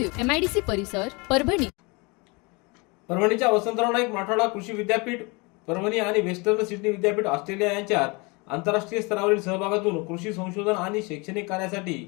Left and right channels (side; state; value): right; quieter; 28.1 dB